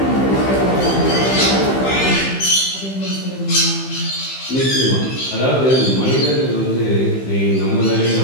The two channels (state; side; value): late; right; 15 ms